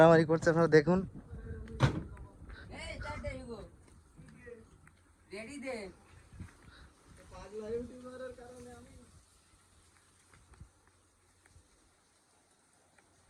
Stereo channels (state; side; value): identical; both; correlation 1.00